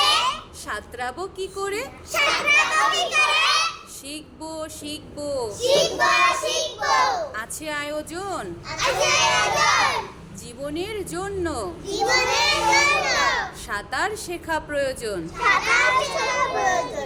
সাঁতরাবো কি করে, সাঁতরাবো কি করে, শিখবো শিখবো শিখবো শিখবো আছে আয়োজন আছে আয়োজন, জীবনের জন্য জীবনের জন্য সাঁতার শেখা প্রয়োজন। সাঁতার শেখা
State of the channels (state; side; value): identical; both; correlation 1.00